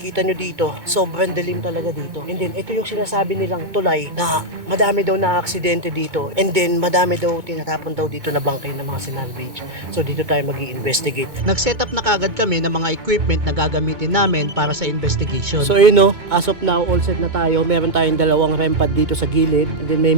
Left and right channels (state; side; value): late; left; 2.2 ms